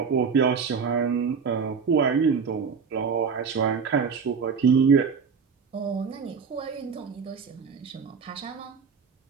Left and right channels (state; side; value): quieter; left; 5.8 dB